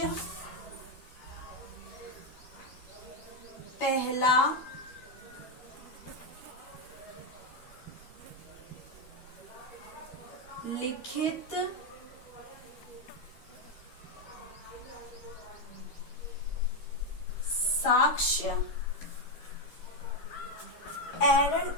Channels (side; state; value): right; late; 12 ms